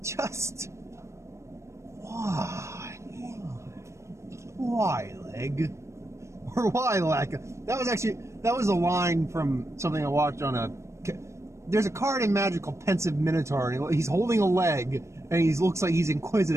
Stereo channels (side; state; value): left; late; 0.14 ms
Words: just why? Why, leg? Or why, lack? That was a line from something I watched on there's a card in Magic called Pensive Minotaur, and he's holding a leg, and he looks like he's